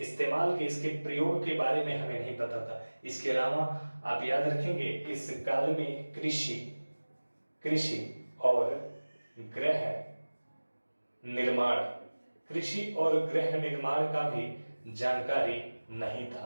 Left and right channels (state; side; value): inverted; both; correlation -1.00